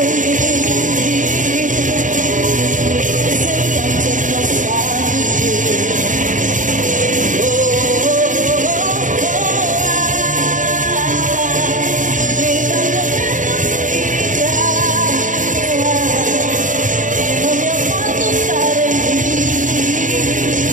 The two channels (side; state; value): left; late; 0.37 ms